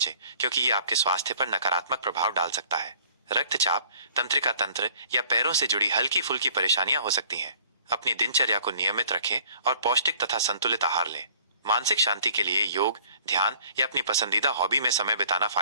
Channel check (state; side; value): inverted; both; correlation -0.54